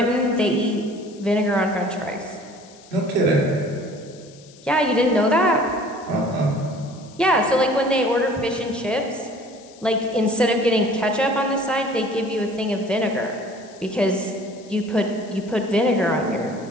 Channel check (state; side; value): noise; left; hiss, 24 dB below the sound